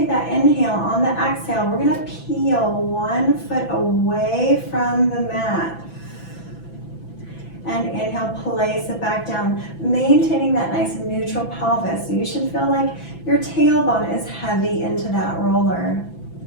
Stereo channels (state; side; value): late; right; 6.0 ms